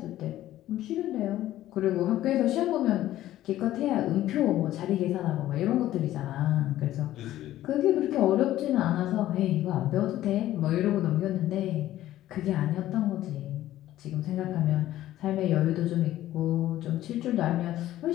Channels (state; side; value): quieter; right; 14.0 dB